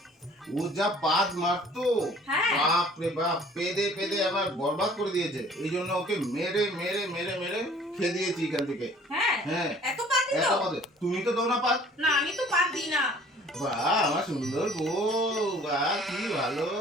ও যা পাদ মারতো, হ্যাঁ। বাপ রে বাপ, পেদে পেদে আমার বরবাদ করে দিয়েছে। এই জন্য ওকে মেরে মেরে মেরে মেরে খেয়ে দিয়েছি এখান থেকে। হ্যাঁ। হ্যাঁ, এত পাত দিত? এত পাদে তুমি তো দাও না পাদ। না, আমি তো পাত দিই না। বাহ, আমার সুন্দর বউ, বাহ কি ভালো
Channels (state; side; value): normal; both; correlation 0.53